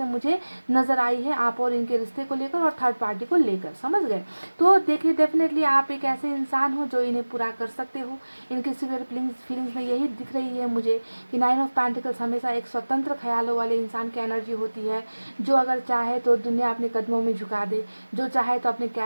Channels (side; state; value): both; inverted; correlation -1.00